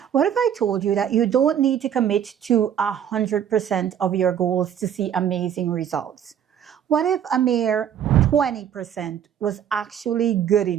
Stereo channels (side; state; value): left; quieter; 9.3 dB